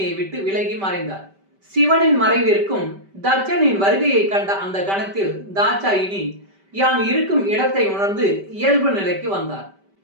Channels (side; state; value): left; late; 5.1 ms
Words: விட்டு விலகி மறைந்தார். சிவனின் மறைவிற்கும் தட்சனின் வருகையை கண்ட அந்த கணத்தில் தாட்சாயினி யான் இருக்கும் இடத்தை உணர்ந்து இயல்பு நிலைக்கு வந்தார்.